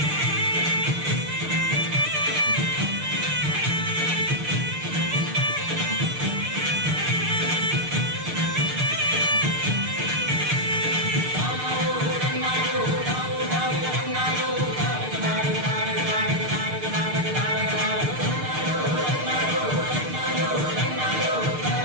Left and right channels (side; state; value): left; late; 6.6 ms